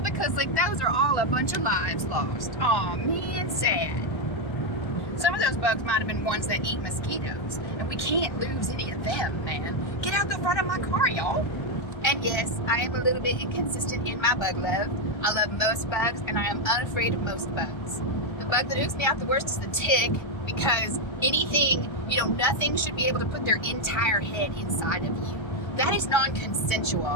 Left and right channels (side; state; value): right; late; 1.3 ms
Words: because like those are all a bunch of lives lost. Aw, man, sad. Some of those bugs might have been ones that eat mosquitoes, and we can't lose any of them, man. Get out the front of my car, y'all. And yes, I am a little bit inconsistent in my bug love. I love most bugs, and I am unafraid of most bugs. The bug that oops me out the worst is the tick, because nothing should be able to put their entire head inside of you. That is